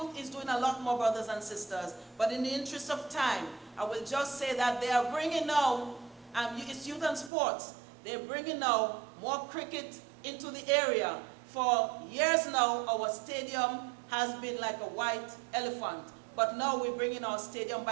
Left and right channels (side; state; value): left; drops out; at 7.3 s